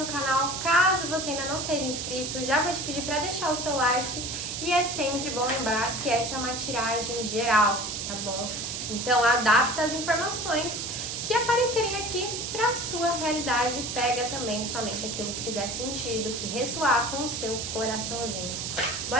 canal. Caso você ainda não seja inscrito, já vou te pedir para deixar o seu like. E é sempre bom lembrar que essa é uma tiragem geral, tá bom? Então adapta as informações que aparecerem aqui para a sua realidade. Pega também somente aquilo que fizer sentido, que ressoar com o seu coraçãozinho.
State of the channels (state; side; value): noise; right; hiss, 4 dB below the sound